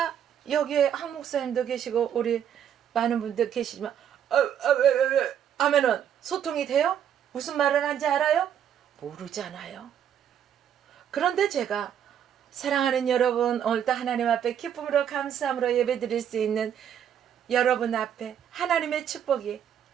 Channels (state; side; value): quieter; left; 9.2 dB